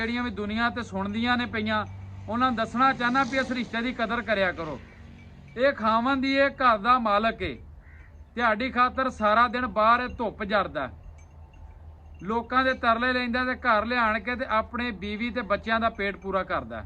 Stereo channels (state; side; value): identical; both; correlation 1.00